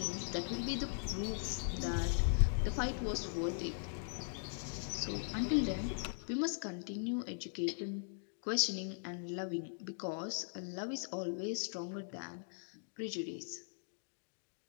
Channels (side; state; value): right; silent; digital silence